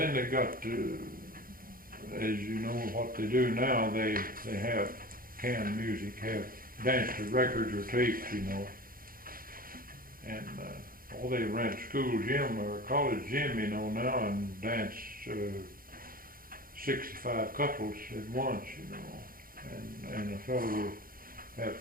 they got to, as you know, what they do now, they have canned music, have dance to records or tapes, you know, and all they rent school gym or college gym, you know, now, and dance 65 couples at once, you know, and a fellow will have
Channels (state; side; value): late; left; 0.42 ms